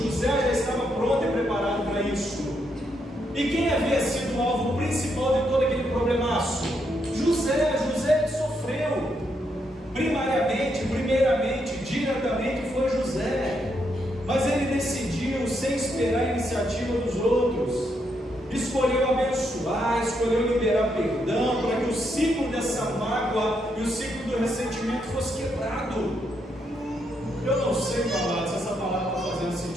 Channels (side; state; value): both; normal; correlation 0.78